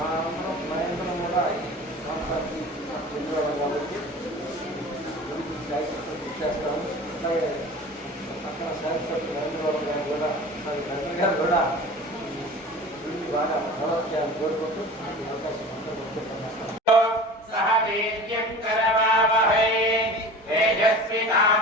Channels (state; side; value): normal; both; correlation 0.38